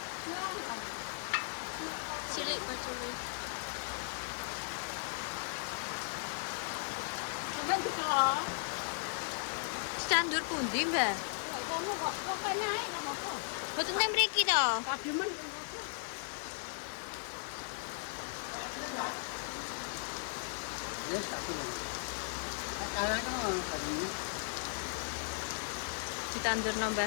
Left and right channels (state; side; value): silent; right; digital silence